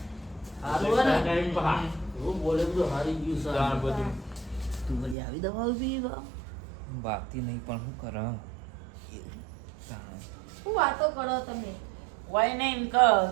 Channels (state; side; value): drops out; left; at 5.2 s